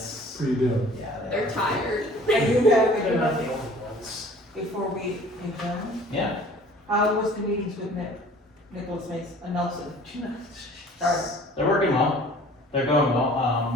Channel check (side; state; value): both; normal; correlation 0.49